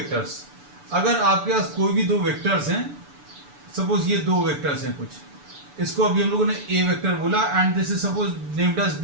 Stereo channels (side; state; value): left; late; 6.9 ms